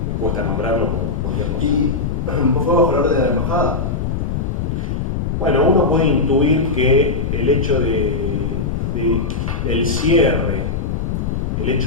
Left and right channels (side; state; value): left; noise; rumble, 1 dB below the sound